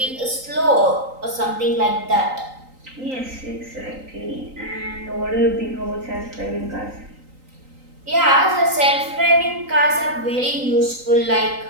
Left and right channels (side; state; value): left; late; 3.9 ms